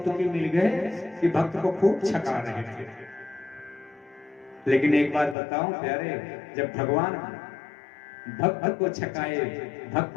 मिल गए कि भक्त को खूब छका रहे थे। लेकिन एक बात बताऊं प्यारे, जब भगवान भक्त को छकाए,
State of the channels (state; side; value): drops out; right; at 5.4 s